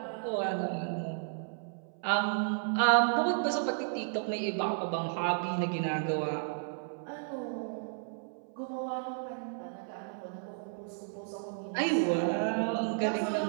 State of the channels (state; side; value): silent; left; 56 dB below the other